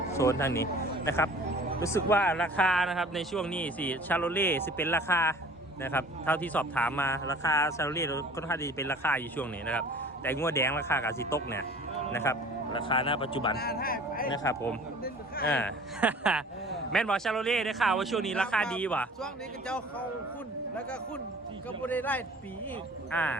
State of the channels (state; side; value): normal; both; correlation 0.47